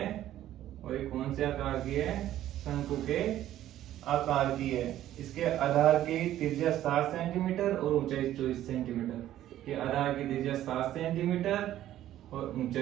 और ये कौन से आकार की है, शंकु के आकार की है। इसके आधार की त्रिज्या 7 सेंटीमीटर और ऊंचाई 24 सेंटीमीटर। ये आधार की त्रिज्या 7 सेंटीमीटर और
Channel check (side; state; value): left; quieter; 12.8 dB